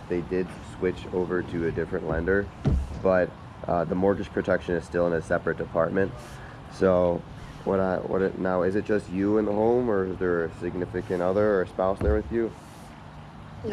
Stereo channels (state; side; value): identical; both; correlation 1.00